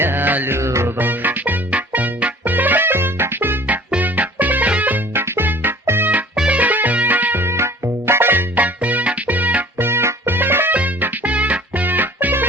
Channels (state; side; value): normal; both; correlation 0.47